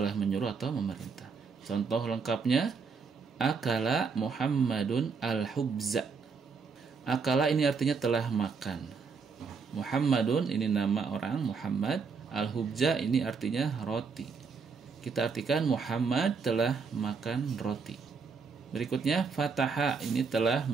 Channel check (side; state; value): left; quieter; 5.2 dB